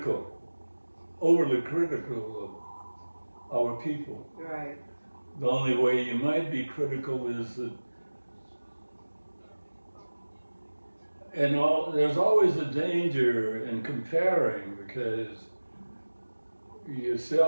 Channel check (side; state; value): both; inverted; correlation -1.00